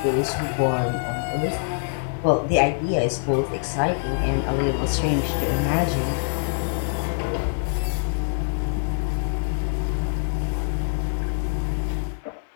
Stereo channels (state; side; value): silent; right; 62 dB below the other